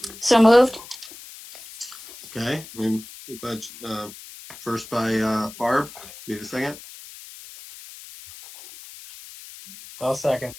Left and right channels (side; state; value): left; noise; hiss, 16 dB below the sound